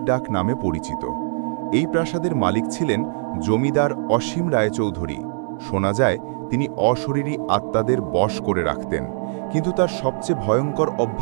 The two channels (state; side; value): silent; left; digital silence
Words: ডাক নামে পরিচিত। এই প্রাসাদের মালিক ছিলেন জমিদার অসীম রায়চৌধুরী। শোনা যায় তিনি অশরীরী আত্মাদের বশ করে রাখতেন, কিন্তু তার সবচেয়ে ভয়ঙ্কর